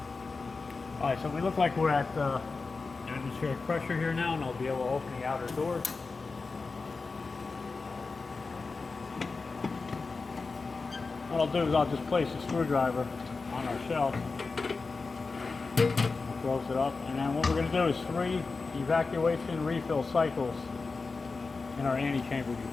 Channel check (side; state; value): right; quieter; 4.2 dB